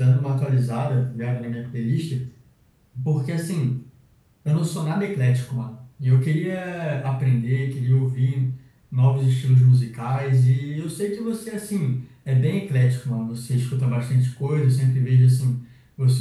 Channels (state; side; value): identical; both; correlation 1.00